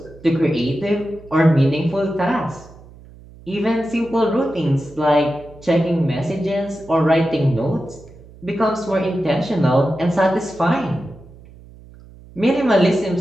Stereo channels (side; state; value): right; noise; hum, 21 dB below the sound